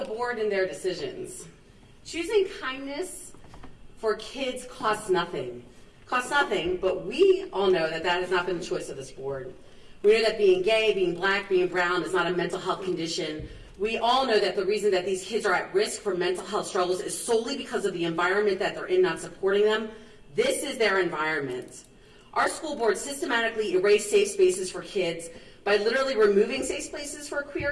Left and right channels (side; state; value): both; identical; correlation 1.00